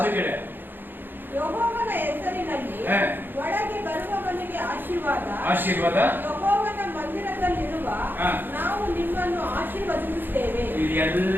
கிடையாது. ಯೆಹೋವನ ಹೆಸರಿನಲ್ಲಿ ಒಳಗೆ ಬರುವವನಿಗೆ ಆಶೀರ್ವಾದ. ಆಶೀರ್ವಾದ. ಯೆಹೋವನ ಮಂದಿರದಲ್ಲಿರುವ ನಾವು ನಿಮ್ಮನ್ನು ಆಶೀರ್ವದಿಸುತ್ತೇವೆ.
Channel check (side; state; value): left; late; 0.095 ms